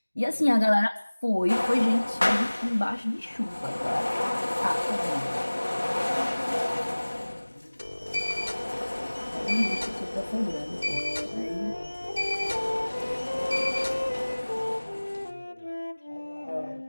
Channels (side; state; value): both; inverted; correlation -1.00